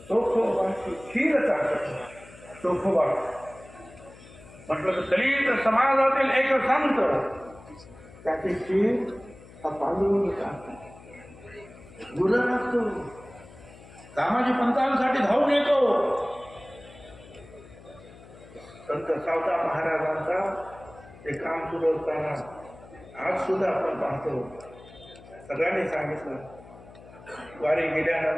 चोखोबाची खीर चालत. चोखोबा म्हटलं तर दलित समाजातील एक संत त्याची खीर हा पांडुरंग चालतो. गुरु असतो दामाजी पंतांसाठी धावून येतो. संत सावता महाराजांचा ते काम सुरू असताना आज सुद्धा आपण पाहतो. सगळ्यांनी सांगितलं वारी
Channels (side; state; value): left; noise; hum, 20 dB below the sound